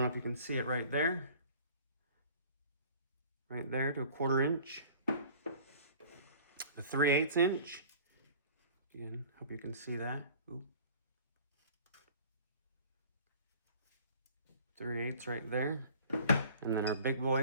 know if you can see it right there. Right there to 1/4 inch. The 3/8 inch. Again, hope you can see that. Ooh. 3/8 right there. And then our big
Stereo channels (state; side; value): inverted; both; correlation -0.47